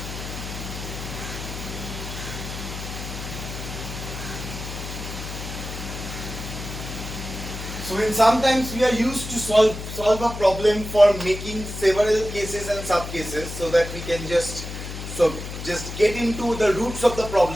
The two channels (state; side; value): noise; left; hum, 8 dB below the sound